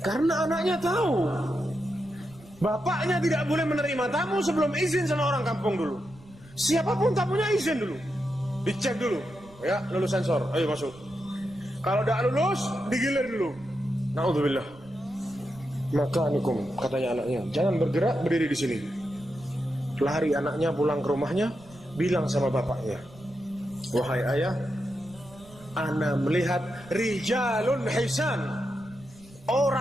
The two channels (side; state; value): right; noise; rumble, 23 dB below the sound